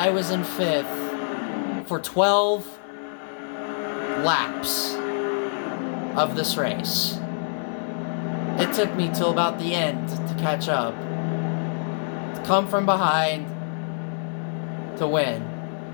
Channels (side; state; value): right; silent; 61 dB below the other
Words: was in 5th for 12 laps of this race. It took me till about the end to catch up, to come from behind, to win.